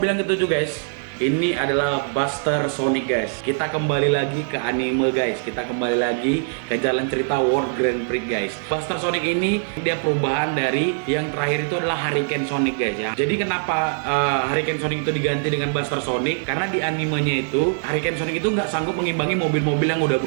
yang ke-7 guys, ini adalah Buster Sonic guys. Kita kembali lagi ke anime guys. Kita kembali lagi ke jalan cerita World Grand Prix guys. Buster Sonic ini dia perubahan dari yang terakhir itu adalah Hurricane Sonic guys ya. Jadi kenapa Hurricane Sonic itu diganti dengan Buster Sonic? Karena di animenya itu Hurricane Sonic itu nggak sanggup mengimbangi mobil-mobil yang udah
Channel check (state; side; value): silent; left; digital silence